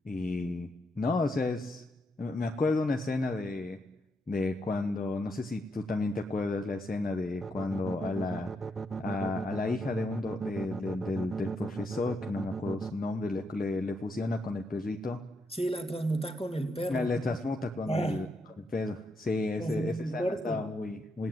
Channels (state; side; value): normal; both; correlation 0.80